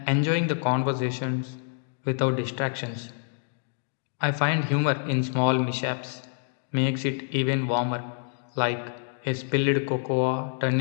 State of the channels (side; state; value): right; silent; digital silence